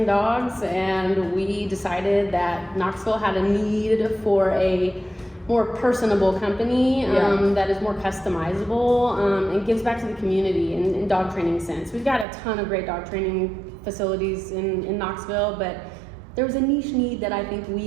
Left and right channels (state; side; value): drops out; left; at 12.2 s